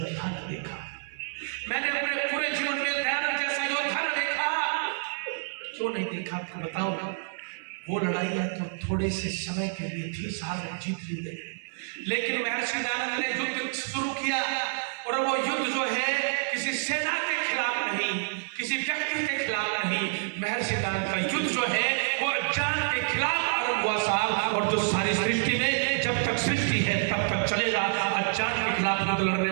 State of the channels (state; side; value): silent; left; 57 dB below the other